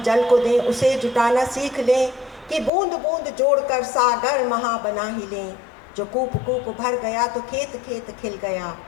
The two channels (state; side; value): drops out; right; at 2.7 s